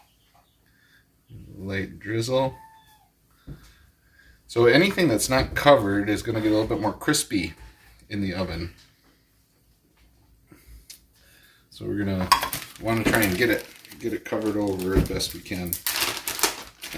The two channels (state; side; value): identical; both; correlation 1.00